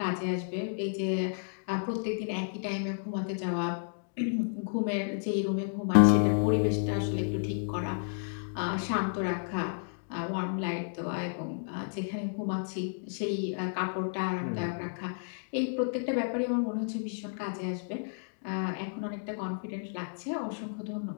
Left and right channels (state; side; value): silent; right; digital silence